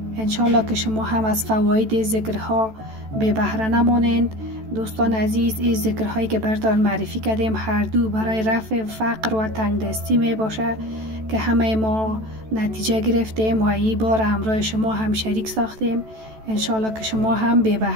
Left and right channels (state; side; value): late; left; 14 ms